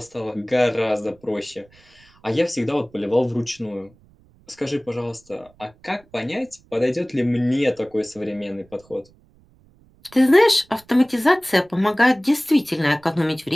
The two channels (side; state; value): right; noise; rumble, 30 dB below the sound